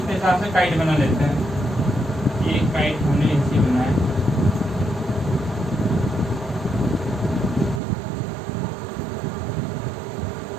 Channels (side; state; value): left; drops out; at 7.8 s